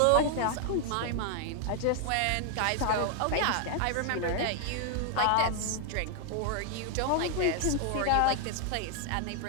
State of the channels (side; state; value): both; different; correlation 0.00